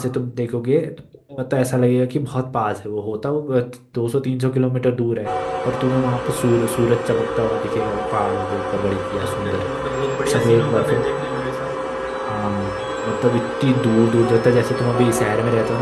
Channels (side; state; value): both; identical; correlation 1.00